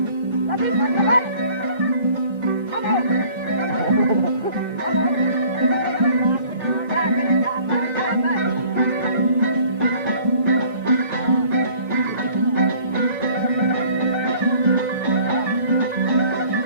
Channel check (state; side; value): inverted; both; correlation -0.53